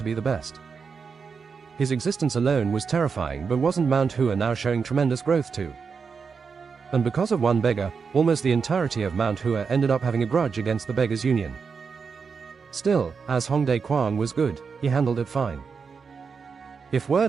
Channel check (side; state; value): left; quieter; 5.6 dB